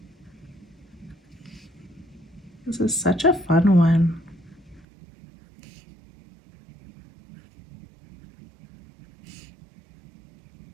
This is such a fun one.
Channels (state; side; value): drops out; left; at 4.9 s